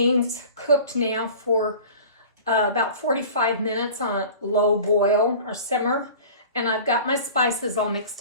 cooked now for about 45 minutes on a low boil or simmer, and I've got my spices all mixed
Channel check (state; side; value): inverted; both; correlation -0.41